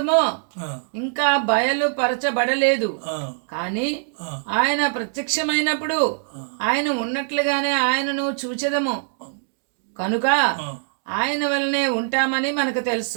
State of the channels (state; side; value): silent; left; digital silence